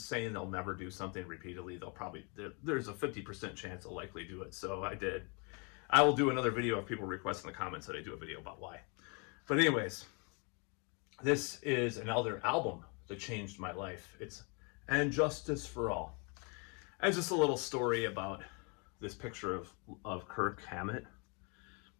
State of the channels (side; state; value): right; quieter; 33.9 dB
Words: saying they'll never do something repeatedly, they'll probably, there's a 50% chance they'll likely do it. So I did. I will do another video if people request in the comments that I do a video about why. But anyways, this is another album that changed my life. It's And Justice for All. And just a little story about this picture of Kirk Hammett.